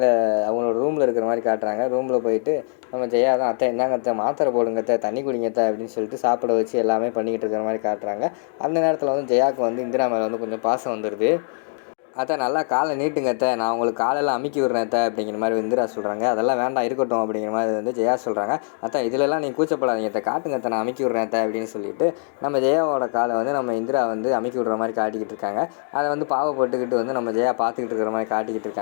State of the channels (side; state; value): right; silent; 64 dB below the other